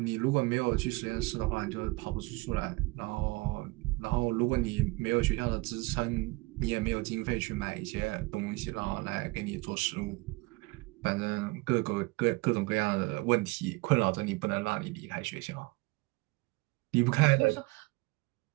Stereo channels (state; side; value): quieter; left; 24.0 dB